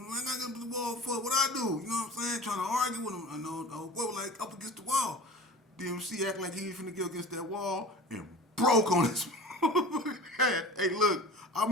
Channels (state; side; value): normal; both; correlation 0.38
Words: him. I got up the wall for what I do. You know what I'm saying? Trying to argue with him. I know, like up against the wall. DMC act like he was finna get against that wall and broke on his head. Hey, look, I